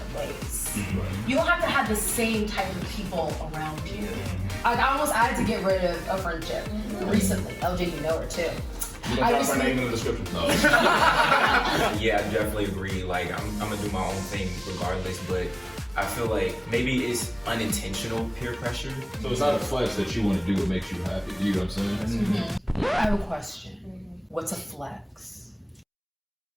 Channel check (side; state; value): both; identical; correlation 1.00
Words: ways. You don't have to have the same type of people around you. I almost had to get rid of a friendship recently. LJ, you know her too. You gonna drop her name in the description? No. Yeah, I definitely agree. Like, I'm gonna do my own thing regardless, but I feel like maybe it's unintentional peer pressure. So it's not a flex that you want to do what makes you happy. You know what I'm saying? I have a question. What's a flex?